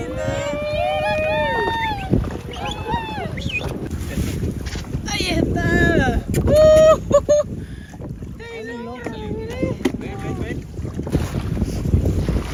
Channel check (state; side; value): identical; both; correlation 1.00